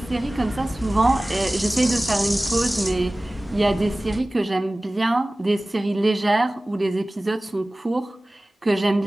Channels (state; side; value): normal; both; correlation 0.98